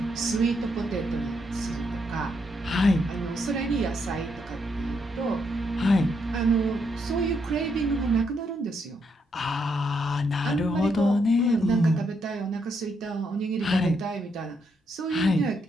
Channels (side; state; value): both; normal; correlation 0.77